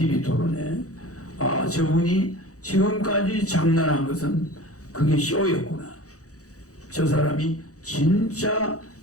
토론에 아, 저분이 지금까지 장난한 것은 그게 쇼였구나. 저 사람이 진짜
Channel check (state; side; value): late; right; 0.66 ms